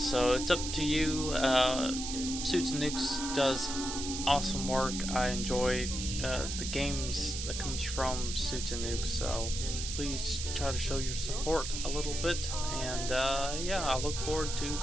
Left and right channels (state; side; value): noise; right; hiss, 5 dB below the sound